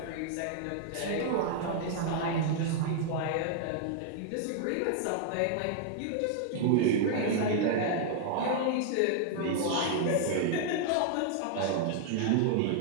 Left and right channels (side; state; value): both; different; correlation -0.01